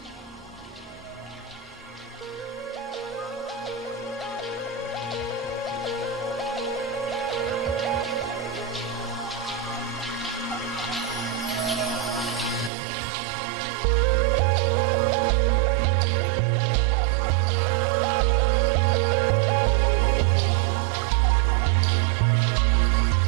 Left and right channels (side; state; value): left; drops out; at 12.7 s